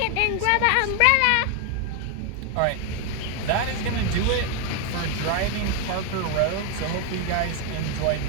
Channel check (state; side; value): different; both; correlation 0.01